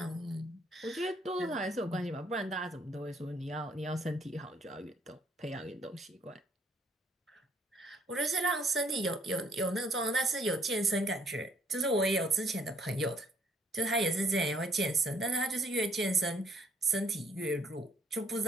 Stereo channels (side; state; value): both; normal; correlation 0.65